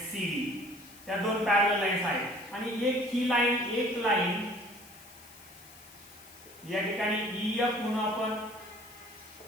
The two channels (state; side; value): noise; left; hiss, 21 dB below the sound